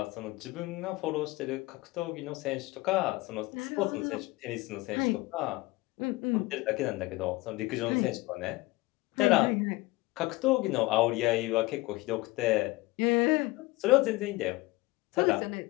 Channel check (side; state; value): right; quieter; 21.2 dB